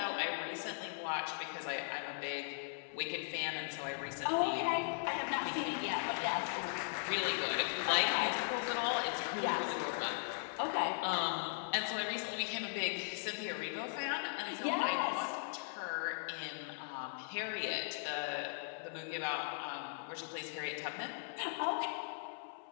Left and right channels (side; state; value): right; silent; 52 dB below the other